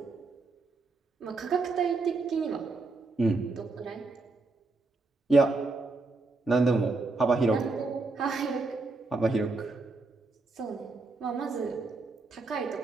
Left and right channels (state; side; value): quieter; left; 3.6 dB